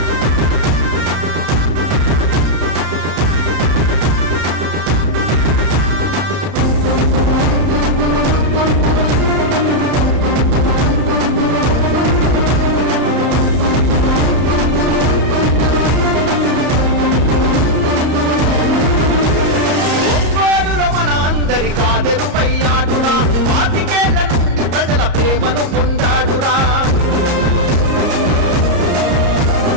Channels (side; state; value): left; late; 34 ms